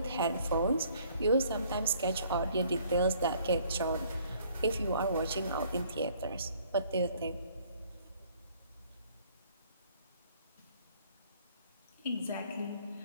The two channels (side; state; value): both; inverted; correlation -0.60